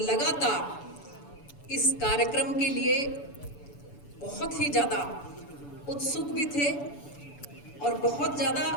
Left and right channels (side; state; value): right; late; 7.0 ms